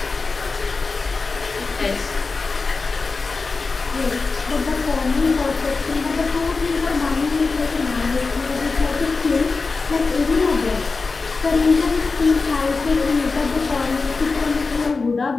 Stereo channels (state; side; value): quieter; right; 4.2 dB